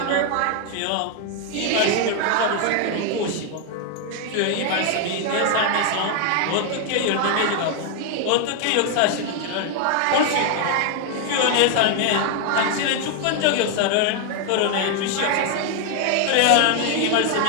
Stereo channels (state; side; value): different; both; correlation 0.00